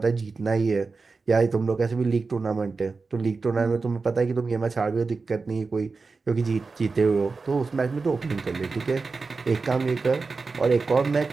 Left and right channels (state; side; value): quieter; left; 4.3 dB